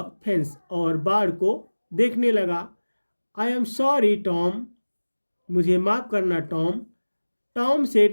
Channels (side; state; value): both; inverted; correlation -1.00